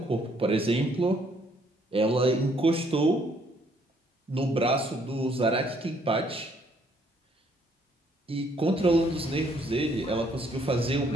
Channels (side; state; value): both; normal; correlation 0.67